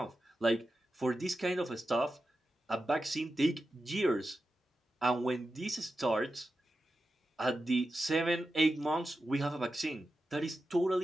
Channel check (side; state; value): both; normal; correlation 0.91